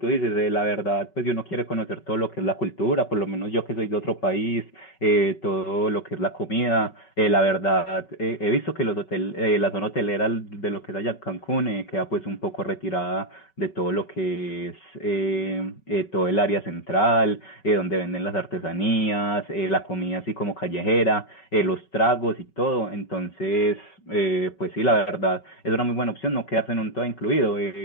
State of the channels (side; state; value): right; late; 5.3 ms